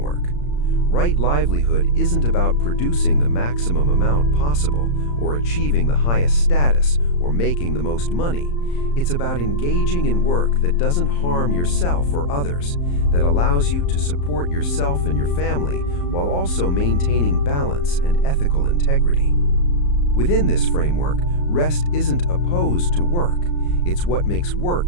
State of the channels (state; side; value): late; right; 34 ms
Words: Right livelihood isn't about producing the maximum amount possible, or achieving the highest status, or making the most money. It's about engaging in work that doesn't harm yourself or others, that allows you to support yourself and your family while also maintaining balance and ethical integrity. Within this framework, rest isn't opposed to work. It's what makes